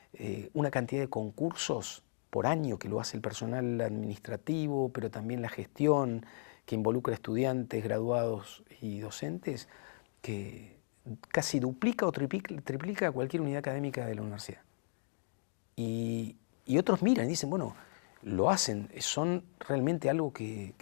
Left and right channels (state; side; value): silent; right; digital silence